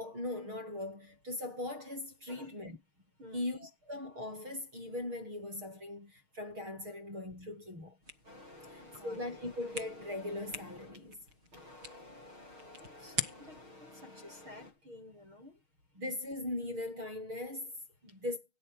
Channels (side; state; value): left; late; 6.4 ms